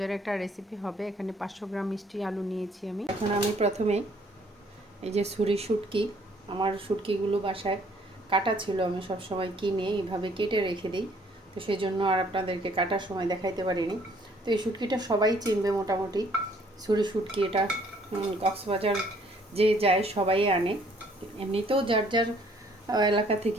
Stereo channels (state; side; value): normal; both; correlation 0.62